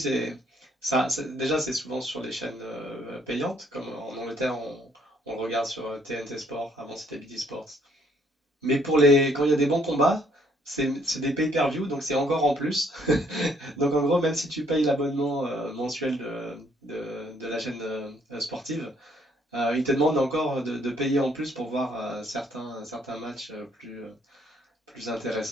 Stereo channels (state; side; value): normal; both; correlation 0.67